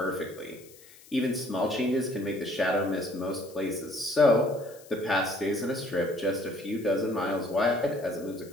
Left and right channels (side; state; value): left; noise; hiss, 23 dB below the sound